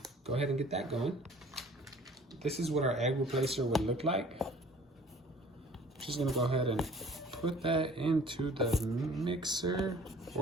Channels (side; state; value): both; normal; correlation 0.49